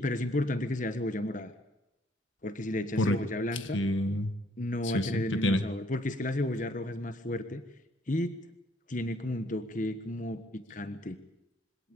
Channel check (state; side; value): normal; both; correlation 0.65